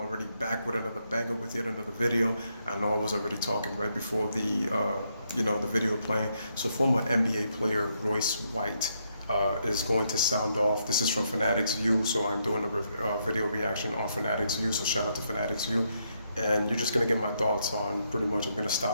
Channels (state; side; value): inverted; both; correlation -0.77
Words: back with another banger with yet another video. I know I was already talking right before the, the video playing. So former NBA player Royce White is going to sound off. This is from Fanatics View, so I'm doing a video reaction on Fanatics View. So shout out to Fanatics View. And you're just gonna get my thoughts on pretty much. I'm gonna